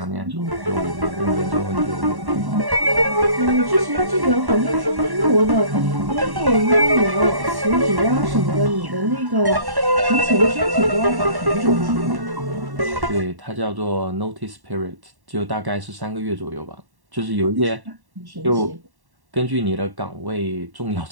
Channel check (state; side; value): late; left; 1.1 ms